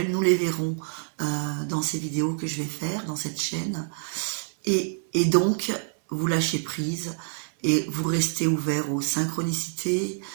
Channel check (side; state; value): left; silent; 60 dB below the other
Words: Nous les verrons dans ces vidéos que je vais faire dans cette chaîne. Et donc, vous lâchez prise et vous restez ouvert aux synchronicités,